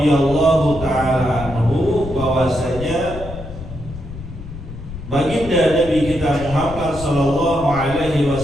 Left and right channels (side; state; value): left; noise; rumble, 11 dB below the sound